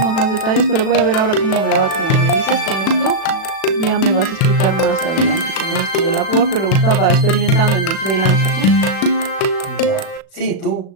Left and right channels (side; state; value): right; late; 37 ms